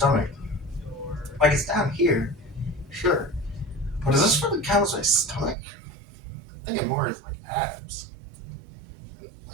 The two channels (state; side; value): drops out; left; at 5.6 s